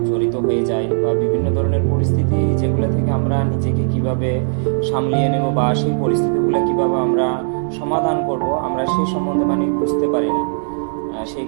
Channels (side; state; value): left; silent; digital silence